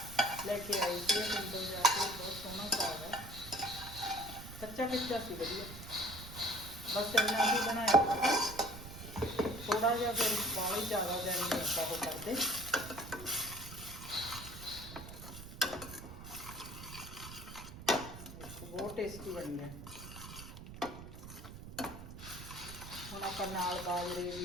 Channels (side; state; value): right; noise; rumble, 12 dB below the sound